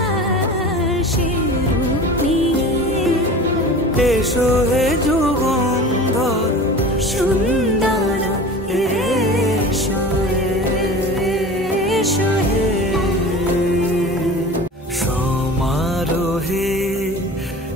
সে রূপ নিয়ে এসো হে যুগন্ধর সুন্দর এসো এসো হে সমারোহে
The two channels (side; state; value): both; normal; correlation 0.37